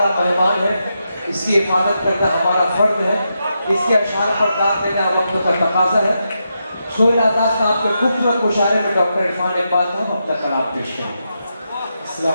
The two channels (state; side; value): inverted; both; correlation -0.85